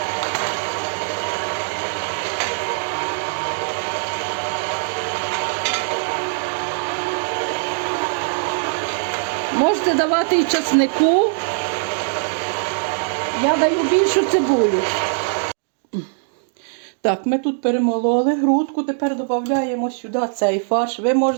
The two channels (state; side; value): silent; left; digital silence